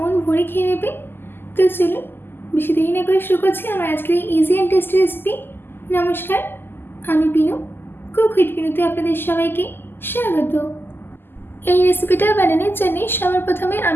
ভরে খেয়ে নেবে। তো চলুন বেশি দেরি না করে শুরু করছি আমার আজকের এই ইজি অ্যান্ড টেস্টি রেসিপি। নমস্কার, আমি পিনু, কুক উইথ পিনুতে আপনাদের সবাইকে স্বাগত। এই রেসিপিটা বানানোর জন্য সবার প্রথমে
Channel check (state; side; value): late; right; 0.10 ms